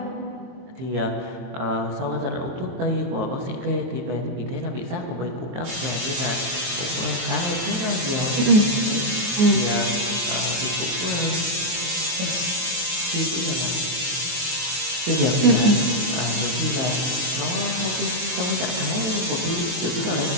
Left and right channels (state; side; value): late; left; 23 ms